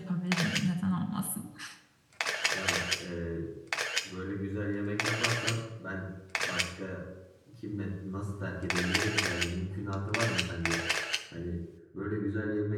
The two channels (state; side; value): identical; both; correlation 1.00